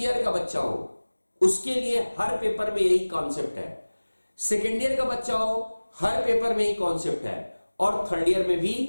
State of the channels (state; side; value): inverted; both; correlation -1.00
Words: का बच्चा हो उसके लिए हर पेपर में यही कॉन्सेप्ट है, सेकेंड ईयर का बच्चा हो हर पेपर में यही कॉन्सेप्ट है, और थर्ड ईयर में भी